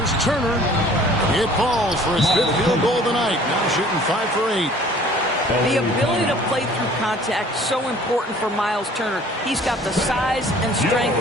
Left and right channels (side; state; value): both; normal; correlation 0.52